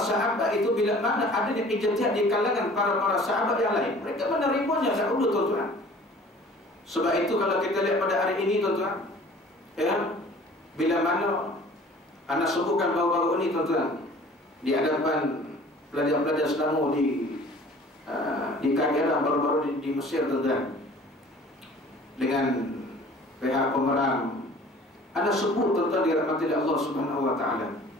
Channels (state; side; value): normal; both; correlation 0.48